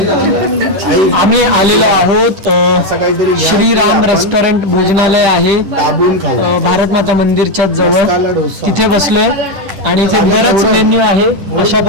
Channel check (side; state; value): left; late; 10 ms